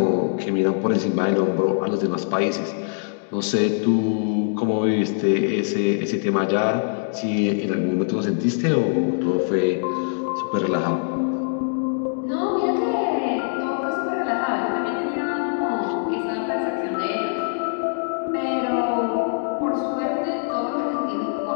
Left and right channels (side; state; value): right; silent; digital silence